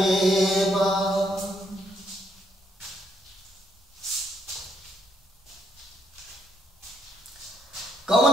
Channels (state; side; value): normal; both; correlation 0.73